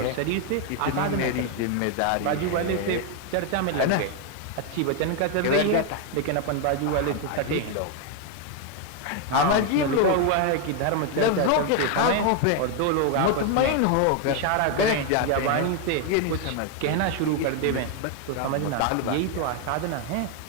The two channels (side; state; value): both; different; correlation 0.01